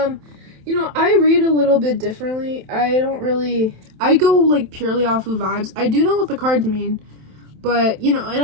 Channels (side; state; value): left; late; 27 ms